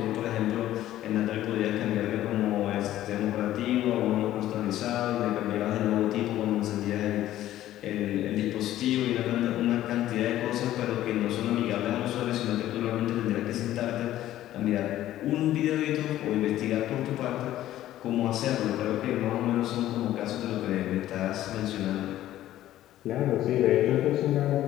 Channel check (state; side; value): quieter; right; 13.6 dB